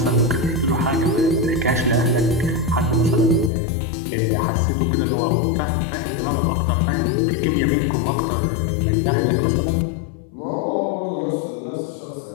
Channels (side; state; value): right; drops out; at 3.5 s